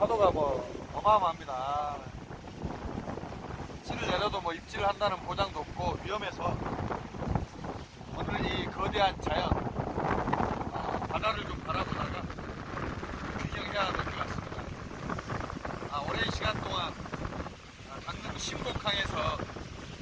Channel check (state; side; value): identical; both; correlation 1.00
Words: 뭐 어마어마합니다. 입질을 내려도 뭐 입질을 한다는 보장도 없고 위험해서 오늘 이 거대한 자연 바다를 좀 바라보다가 구경해야 될 것 같습니다. 오랜 시간 동안 강릉 신곡항에서